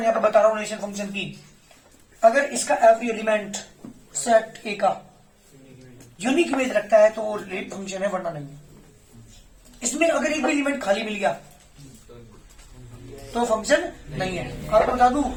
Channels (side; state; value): both; identical; correlation 1.00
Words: यहां पर बता रहा हूं रिलेशन फंक्शन की। अगर इसका एवरी एलिमेंट सेट ए का यूनिक इमेज रखता है तो वो फंक्शन है, वरना नहीं। इसमें अगर एक भी एलिमेंट खाली मिल गया तो फंक्शन नहीं है। आपको बता दूं,